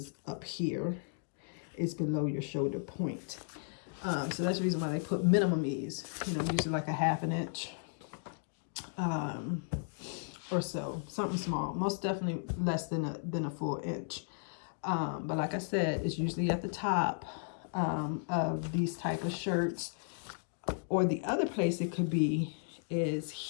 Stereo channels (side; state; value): right; silent; digital silence